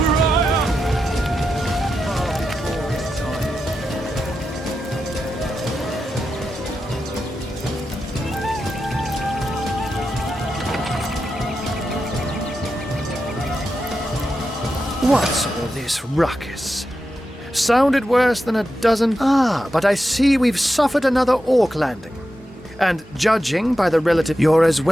higher. What's all this ruckus? Sounded worse than a dozen... Ah, but I see we've suffered another orc landing. And judging by the relative... You're as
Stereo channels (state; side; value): normal; both; correlation 0.89